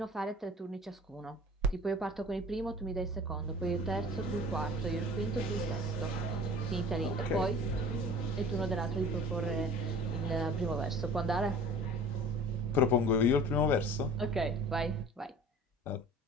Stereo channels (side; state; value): both; normal; correlation 0.44